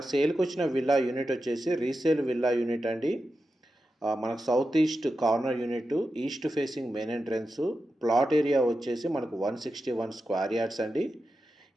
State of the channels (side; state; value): both; normal; correlation 0.90